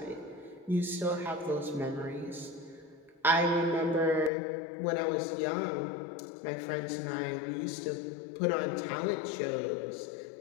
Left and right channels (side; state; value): right; drops out; at 4.3 s